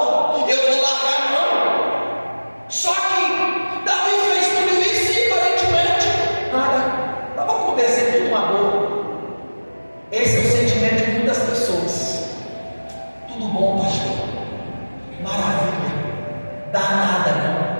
eu vou largar a mão. Só que Davi fez tudo isso e aparentemente nada estava acontecendo, tudo uma boa. Esse é o sentimento de muitas pessoas. Tudo bom, pastor? Maravilha. Dá nada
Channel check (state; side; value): inverted; both; correlation -1.00